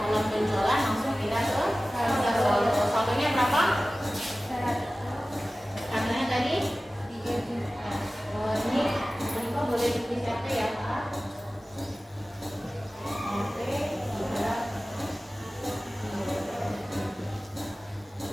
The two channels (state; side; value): normal; both; correlation 0.97